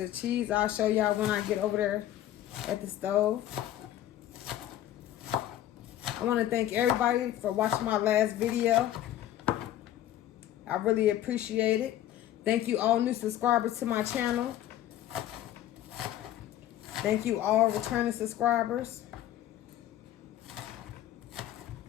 cheese. I'll show y'all when I get over there at the stove. I want to thank everybody for watching my last video. I really appreciate it. Thank you all new subscribers to my channel. Thank you all returning subscribers.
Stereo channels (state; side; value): quieter; right; 12.6 dB